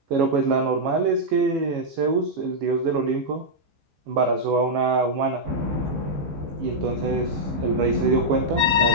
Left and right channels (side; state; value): left; late; 14 ms